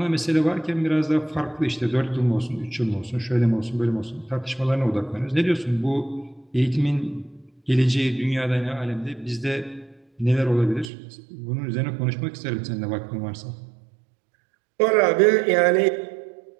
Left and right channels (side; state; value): left; drops out; at 10.9 s